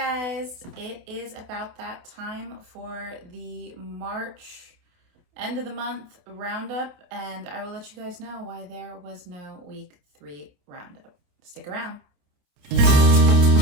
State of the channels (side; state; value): left; late; 28 ms